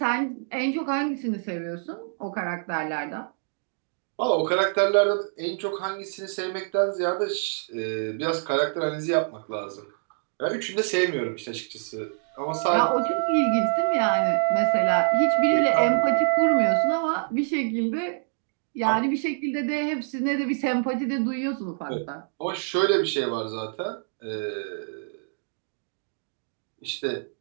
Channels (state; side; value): silent; left; digital silence